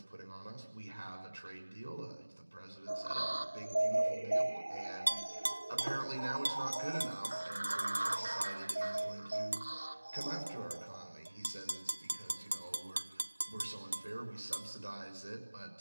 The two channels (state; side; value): inverted; both; correlation -1.00